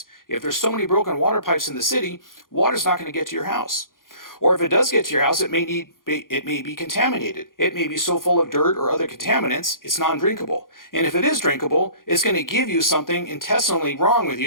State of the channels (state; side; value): late; right; 0.90 ms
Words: If there's so many broken water pipes in the city, water's not going to get to your house. Or if it does get to your house, it may be contaminated. It may be so full of dirt or other contaminants, it's non-drinkable. And if it is drinkable, it's going to give you something intestinally wrong with